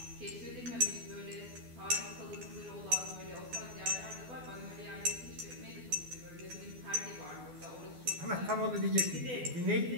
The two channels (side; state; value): left; late; 12 ms